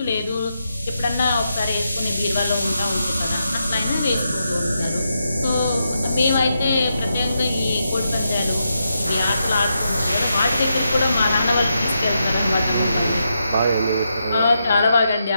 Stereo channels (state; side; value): inverted; both; correlation -0.84